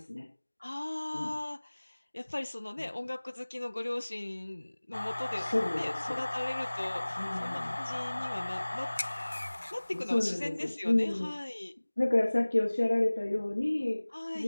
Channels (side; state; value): both; inverted; correlation -1.00